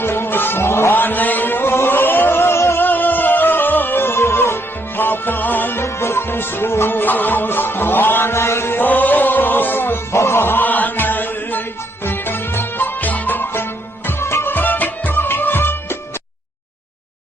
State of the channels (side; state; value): both; normal; correlation 0.73